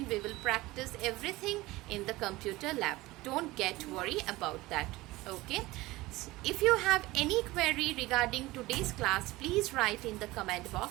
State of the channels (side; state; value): left; quieter; 19.6 dB